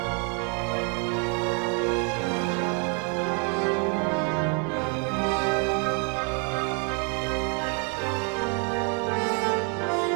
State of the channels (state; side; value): quieter; left; 36.8 dB